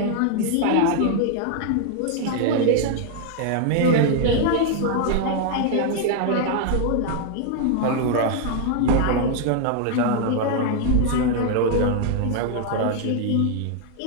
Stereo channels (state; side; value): different; both; correlation 0.00